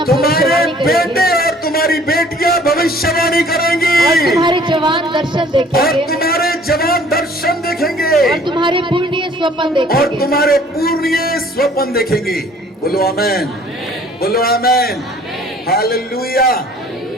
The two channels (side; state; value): both; normal; correlation 0.55